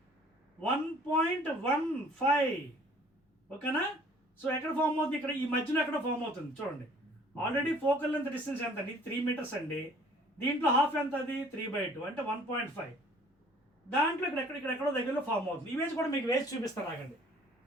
1.15. ఓకేనా? సో ఎక్కడ ఫామ్ అవుతుంది? ఇక్కడ ఈ మధ్యలో ఎక్కడ ఫామ్ అవుతుంది చూడండి. ఆల్రెడీ ఫోకల్ లెంత్ డిస్టెన్స్ ఎంత అండి? 3 మీటర్స్ అండి. దీంట్లో హాఫ్ ఎంత? అది 3/2 అంటే 1.5. దాంట్లో ఇక్కడెక్కడో దగ్గరలో ఫామ్ అవుతుంది. ఇమేజ్ కూడా మీకు వేసి చూపిస్తాను, ఆగండి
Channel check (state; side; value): normal; both; correlation 0.54